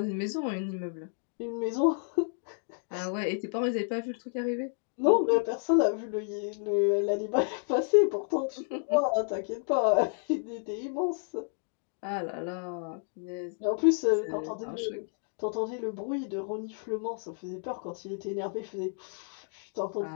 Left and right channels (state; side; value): silent; right; 57 dB below the other